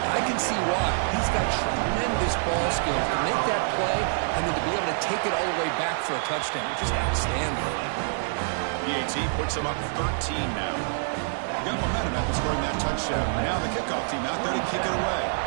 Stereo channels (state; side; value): silent; left; 57 dB below the other